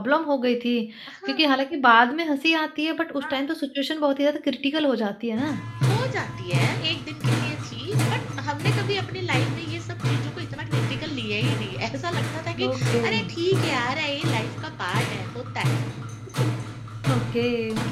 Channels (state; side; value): identical; both; correlation 1.00